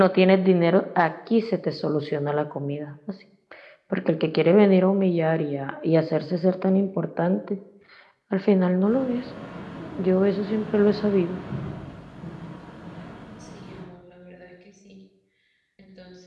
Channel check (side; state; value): both; identical; correlation 1.00